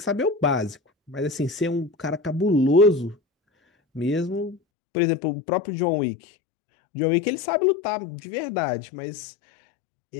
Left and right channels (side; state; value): right; drops out; at 4.6 s